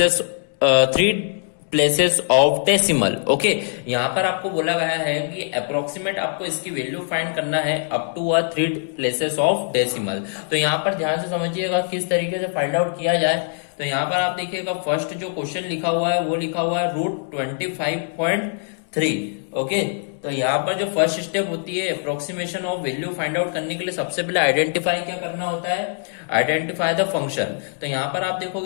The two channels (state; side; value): silent; right; digital silence